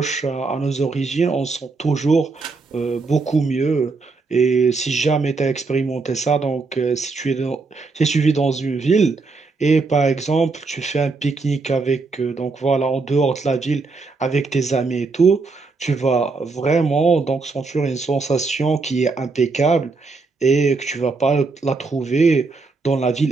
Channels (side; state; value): left; quieter; 4.1 dB